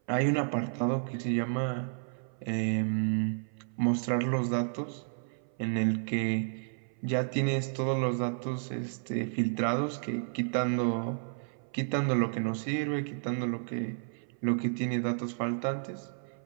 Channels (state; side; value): silent; left; 57 dB below the other